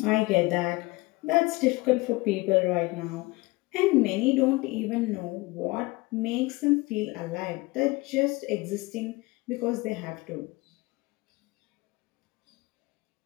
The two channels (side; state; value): right; quieter; 23.1 dB